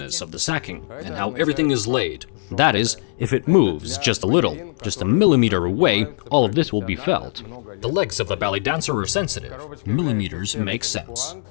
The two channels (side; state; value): right; silent; digital silence